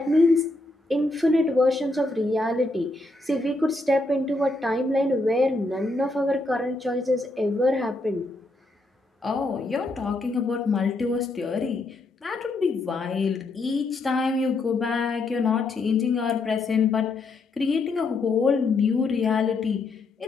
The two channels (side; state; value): right; quieter; 3.0 dB